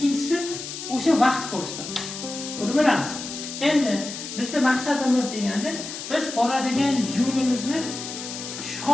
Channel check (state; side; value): noise; left; hiss, 9 dB below the sound